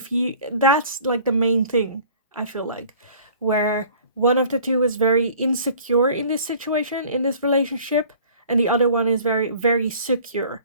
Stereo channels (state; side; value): inverted; both; correlation -0.50